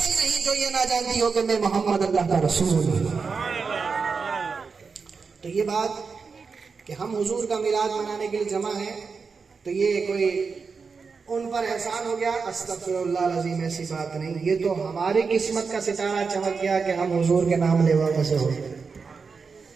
نہیں جو یہ نہ جانتی ہو کہ میں محمد اللہ کا رسول ہوں۔ تو یہ بات کہ ہم حضور کا میلاد منانے کے لیے جمع ہیں تو یہ کوئی ان پر احسان ہو گیا، استغفر اللہ العظیم، ایسی بات نہیں، یہ تو ہماری قسمت کا ستارہ چمک گیا کہ ہم حضور کے نام لیوا میں سے ہو۔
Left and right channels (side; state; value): left; quieter; 5.1 dB